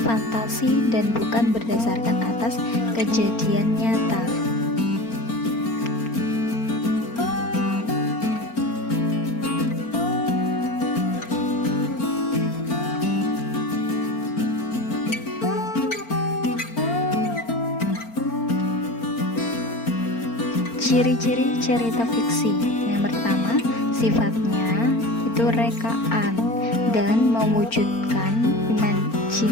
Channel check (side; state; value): right; late; 4.4 ms